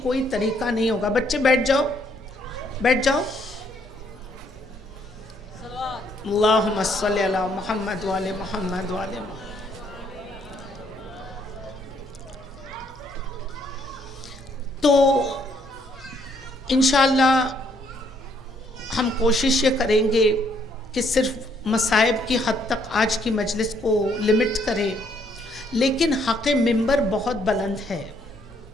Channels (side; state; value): both; normal; correlation 0.69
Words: کوئی طریقہ نہیں ہوگا. بچے بیٹھ جاؤ، بیٹھ جاؤ. اللہم صلی علی محمد وعلی محمد وعلی محمد. تو انشاءاللہ ہم کوشش یہ کریں گے کہ صرف مصائب کی حد تک آج کی مجلس کو لمٹ کریں، لیکن حق ممبر بہت بلند ہے.